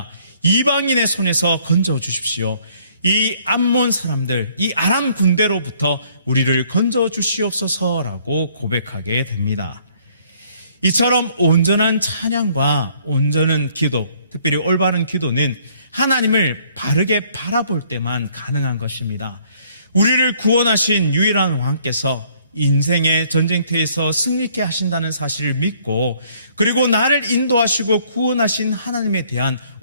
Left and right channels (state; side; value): inverted; both; correlation -0.63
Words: 이방인의 손에서 건져 주십시오. 이 암몬 사람들, 이 아람 군대로부터 우리를 건져 주시옵소서라고 고백하게 됩니다. 이처럼 온전한 찬양과 온전한 기도, 특별히 올바른 기도는 하나님을 바르게 바라볼 때만 가능한 것입니다. 우리를 구원하신 유일한 왕께서 인생의 전쟁터에서 승리케 하신다는 사실을 믿고, 그리고 나를 인도하시고 구원하신 하나님에 대한